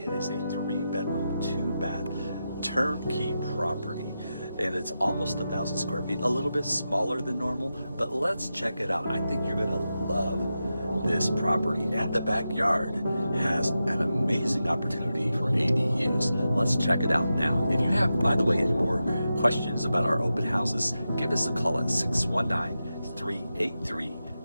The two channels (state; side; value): inverted; both; correlation -0.90